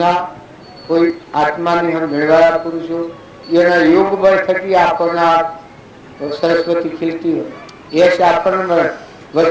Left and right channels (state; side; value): identical; both; correlation 1.00